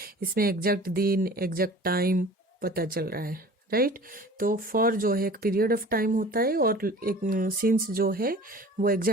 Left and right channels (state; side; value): normal; both; correlation 0.43